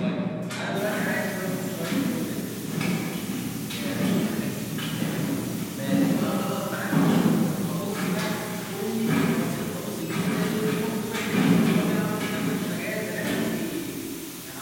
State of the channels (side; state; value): both; identical; correlation 1.00